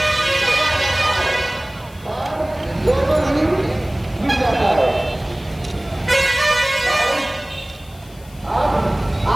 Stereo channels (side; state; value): left; noise; hiss, 25 dB below the sound